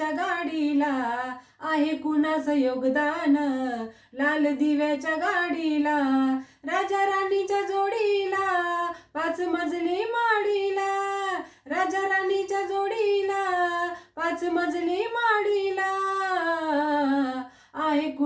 गाडीला, आहे कुणाचं योगदान लाल दिव्याच्या गाडीला. राजा राणीच्या जोडीला 5 मजली माडीला, राजा राणीच्या जोडीला 5 मजली माडीला. आहे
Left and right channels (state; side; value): identical; both; correlation 1.00